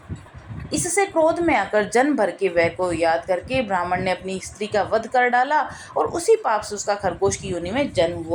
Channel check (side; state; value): both; identical; correlation 1.00